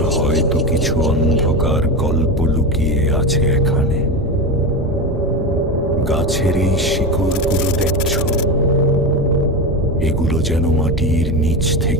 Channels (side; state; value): both; normal; correlation 0.19